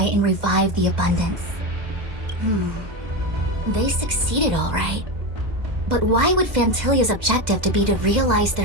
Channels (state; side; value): late; left; 2.2 ms